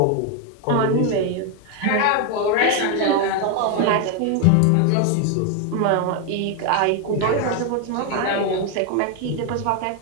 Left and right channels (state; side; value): different; both; correlation 0.01